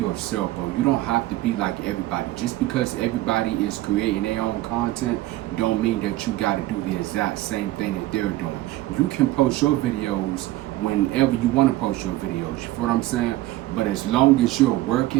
bro. You don't have to be like everybody. Just because everybody is creating their own content don't mean that you got to do the exact same thing that they're doing. You can post your videos whenever you want to post your videos. You feel what I'm saying? But as long as you're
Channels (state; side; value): quieter; left; 16.8 dB